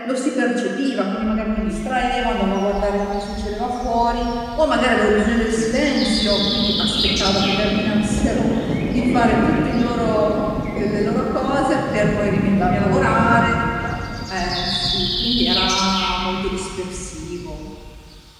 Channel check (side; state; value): both; identical; correlation 1.00